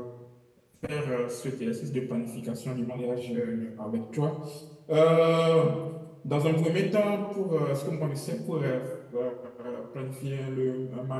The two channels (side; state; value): both; identical; correlation 1.00